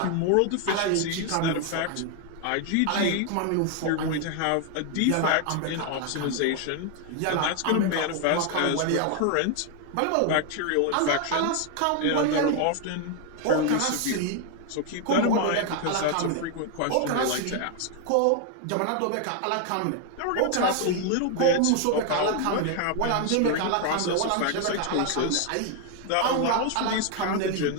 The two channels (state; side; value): different; both; correlation 0.00